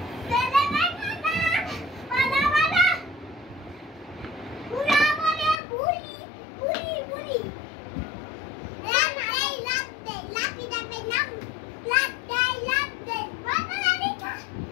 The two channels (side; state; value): right; drops out; at 5.6 s